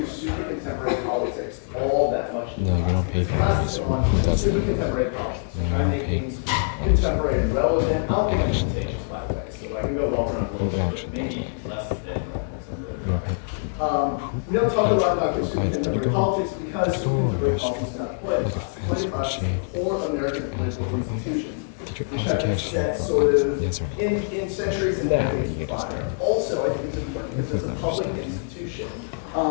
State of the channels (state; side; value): silent; right; digital silence